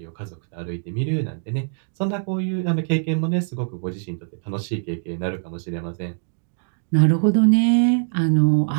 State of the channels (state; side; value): silent; left; digital silence